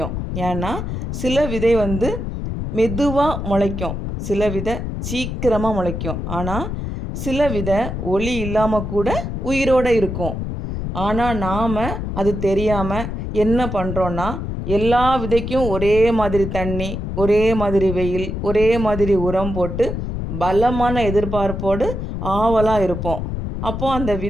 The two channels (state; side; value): noise; left; rumble, 4 dB below the sound